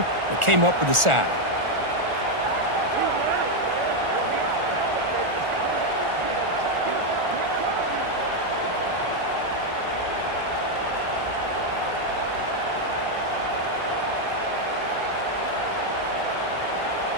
and came up with the sack.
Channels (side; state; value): left; late; 1.4 ms